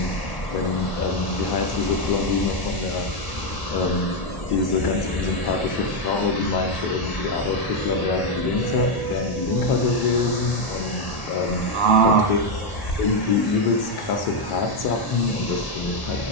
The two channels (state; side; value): late; right; 1.1 ms